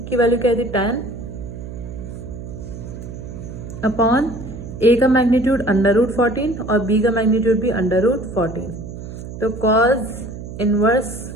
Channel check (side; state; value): right; noise; hum, 11 dB below the sound